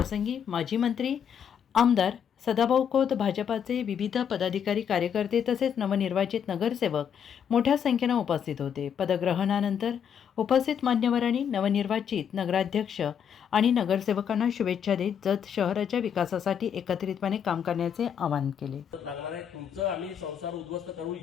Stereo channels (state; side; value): quieter; right; 8.1 dB